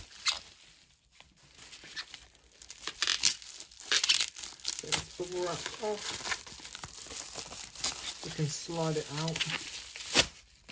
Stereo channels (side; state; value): both; identical; correlation 1.00